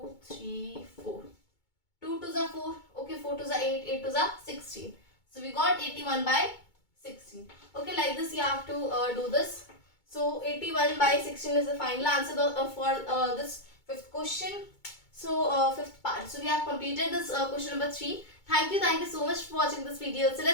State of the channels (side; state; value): right; late; 2.2 ms